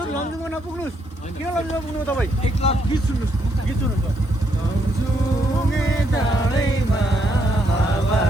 लमजुङमा नपुग्नुहोस्। किन लमजुङमा पुग्नु तपाईँ? एक लाख गीत सुन्नुहोस् गीत सुन्नुहुन्छ। लमजुङे डाँडैमा हावा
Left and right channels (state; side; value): normal; both; correlation 0.75